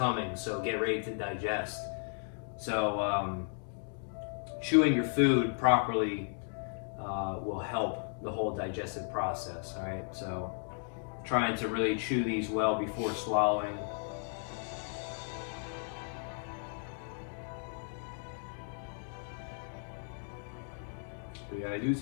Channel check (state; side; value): silent; right; 54 dB below the other